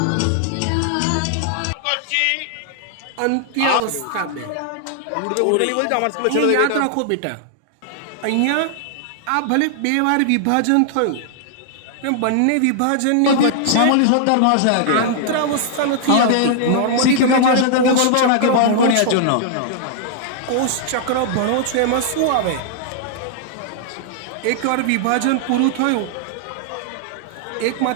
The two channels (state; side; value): different; both; correlation -0.01